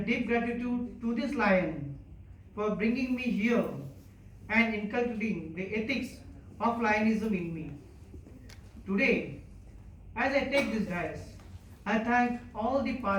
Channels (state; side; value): identical; both; correlation 1.00